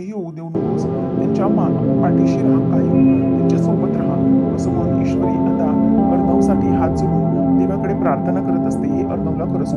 होऊ देऊ नकोस. त्यांच्या पाठीशी राहा, कायम त्यांच्या सोबत राहा, असं म्हणून ईश्वरी आता अर्णवसाठी हात जोडून देवाकडे प्रार्थना करत असते. हे अर्णवला खरंच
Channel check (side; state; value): both; identical; correlation 1.00